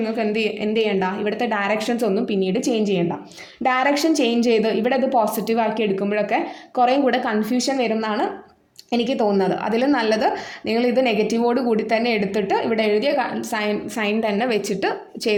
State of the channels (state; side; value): identical; both; correlation 1.00